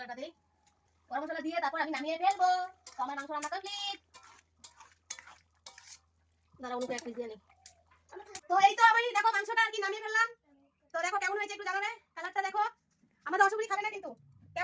দিই, গরম মশলা দিয়ে তারপর আমি নামিয়ে ফেলবো। তো আমার মাংস রান্না কমপ্লিট। দাঁড়া অনুকে এক পিস দিয়ে নিই। তো এই তো আমি দেখো মাংসটা আর কি নামিয়ে ফেললাম। তো দেখো কেমন হয়েছে একটু জানাবে, কালারটা দেখো। আমাদের অসুবিধা খাবে না কিন্তু,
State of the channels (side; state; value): both; identical; correlation 1.00